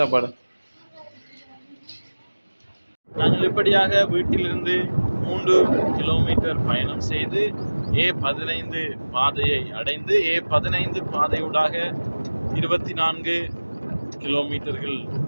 நாங்கள் இப்படியாக வீட்டிலிருந்து 3 கிலோமீட்டர் பயணம் செய்து A15 பாதையை அடைந்து A15 பாதையூடாக 24 கிலோமீட்டர்கள்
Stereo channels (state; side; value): inverted; both; correlation -1.00